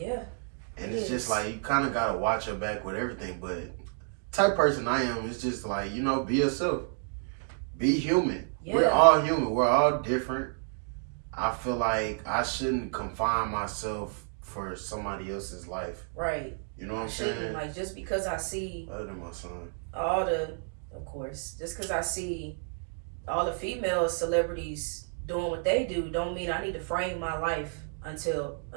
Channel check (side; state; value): left; silent; 58 dB below the other